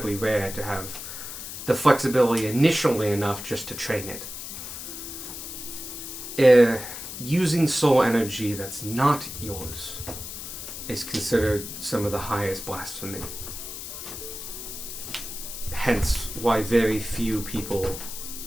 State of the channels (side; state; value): left; noise; hiss, 9 dB below the sound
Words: rare to have the flexibility initially enough just to train it. Using soul energy that's not yours is considered some of the highest blasphemy. Hence why very few people